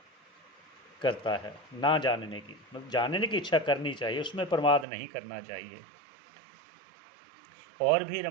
करता है। ना जानने की मतलब जानने की इच्छा करनी चाहिए, उसमें प्रमाद नहीं करना चाहिए। और भी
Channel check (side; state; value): left; drops out; at 4.9 s